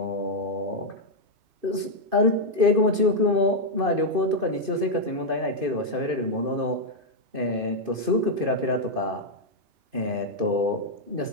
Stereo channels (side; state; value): left; late; 2.5 ms